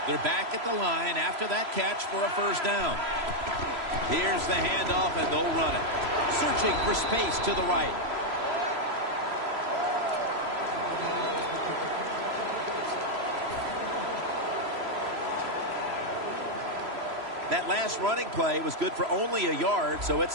They're back at the line after that catch for a first down. Here's the handoff, and they'll run it. Searching for space to the right. That last running play was good for only a yard, so it's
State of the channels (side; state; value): left; late; 3.0 ms